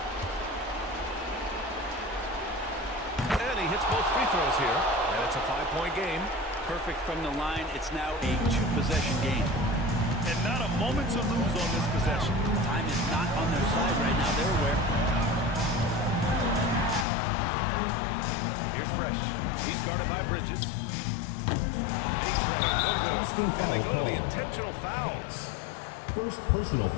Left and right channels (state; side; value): drops out; right; at 17.1 s